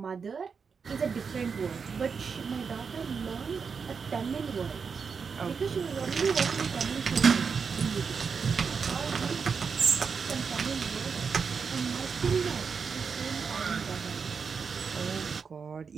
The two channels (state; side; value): quieter; left; 5.8 dB